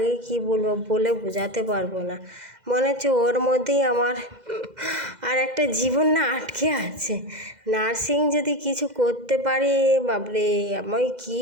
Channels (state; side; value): late; left; 2.0 ms